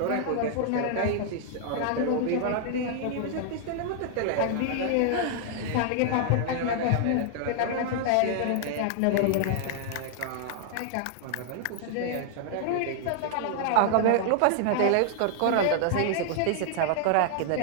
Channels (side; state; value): both; different; correlation -0.01